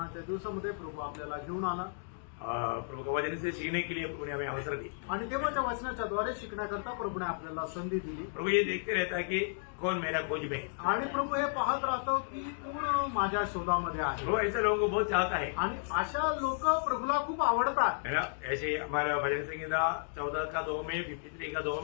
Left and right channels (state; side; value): silent; right; digital silence